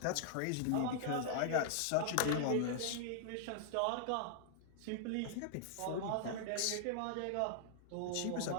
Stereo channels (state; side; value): different; both; correlation -0.01